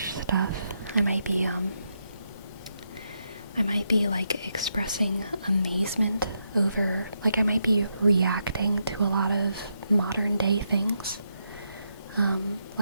stuff. I might be like expressing amazement over, like I might be reacting to a lot of modern day things,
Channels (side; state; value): both; inverted; correlation -0.81